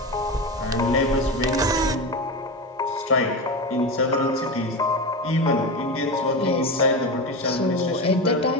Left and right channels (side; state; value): both; normal; correlation 0.21